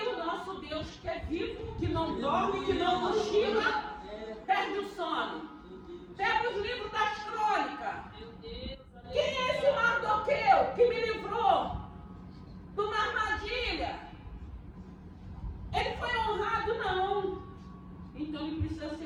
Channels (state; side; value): identical; both; correlation 1.00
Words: o nosso Deus, que é vivo, que não dorme, que não cochila, perde o sono. Pega os livros das crônicas. Quem é esse Mardoqueu que me livrou de uma armadilha? Ele foi honrado? Não. Então ele precisa